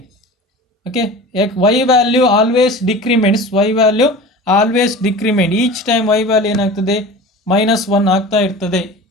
Okay, y value always decrements. Y value always decrement. Each time y value ಏನಾಗ್ತದೆ, -1 ಆಗ್ತಾ ಇರ್ತದೆ.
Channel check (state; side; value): normal; both; correlation 0.36